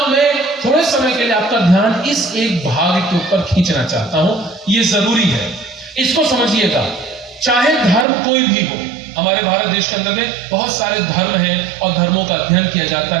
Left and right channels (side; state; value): left; drops out; at 8.1 s